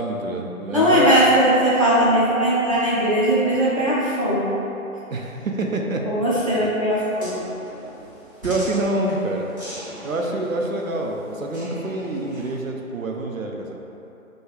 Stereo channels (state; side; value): normal; both; correlation 0.08